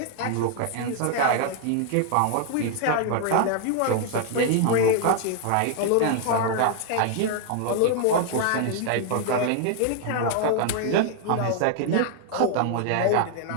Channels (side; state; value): both; different; correlation 0.00